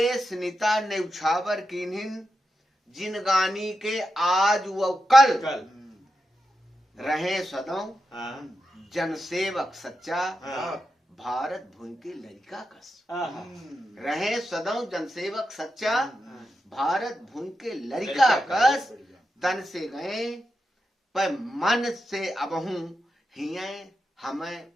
निता न्यौछावर किन्हिन जिन गानी के आज व कल, रहे सदों हाँ जनसेवक सच्चा हाँ भारत भूमि के लड़का कस। हाँ रहे सदों जनसेवक सच्चा भारत भूमि के लड़का कस। तन से गए पर मन से अबहू हिये हमें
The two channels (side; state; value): both; normal; correlation 0.88